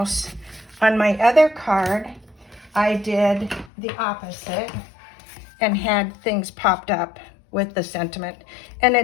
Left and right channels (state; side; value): drops out; right; at 3.7 s